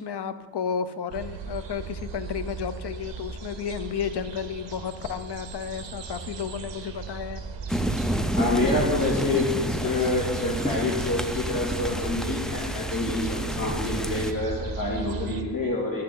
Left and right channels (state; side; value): normal; both; correlation 0.24